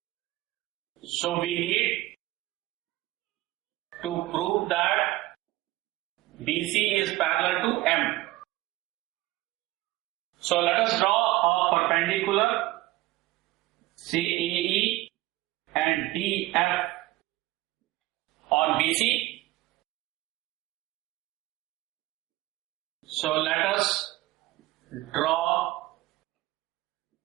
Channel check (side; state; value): left; quieter; 18.3 dB